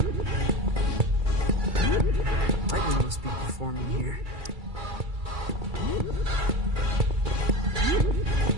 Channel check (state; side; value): late; left; 2.3 ms